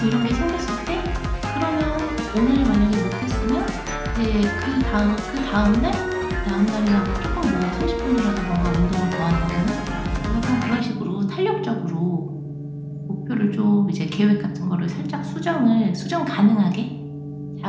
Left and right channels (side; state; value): both; identical; correlation 1.00